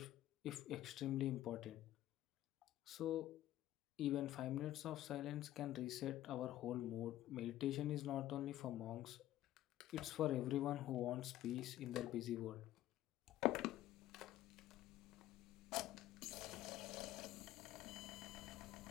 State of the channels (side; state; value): right; quieter; 14.0 dB